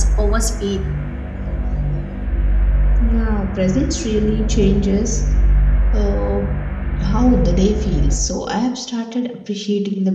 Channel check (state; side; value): identical; both; correlation 1.00